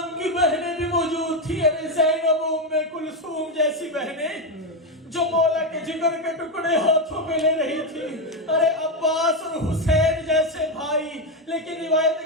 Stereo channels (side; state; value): both; normal; correlation 0.08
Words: کی بہنیں بھی موجود تھی. زینب ام کلثوم جیسی بہنیں جو مولا کے جگر کے ٹکڑے ہاتھوں پہ لے رہی تھی. ارے عباس اور حسین جیسے بھائی. لیکن روایت